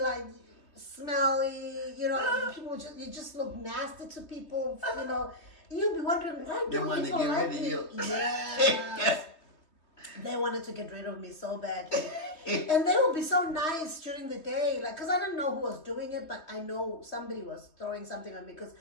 smelly, you know, people you just look nasty to people, you know. You'd be wondering, why don't people like me? Yes. They wanted to get rid of me so badly. And they would be so nice during the day, like, because I don't know who was doing it, but I know somebody was throwing something on me because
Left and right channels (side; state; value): right; late; 3.2 ms